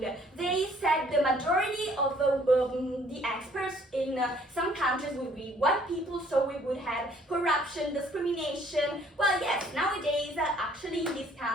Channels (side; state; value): both; normal; correlation 0.60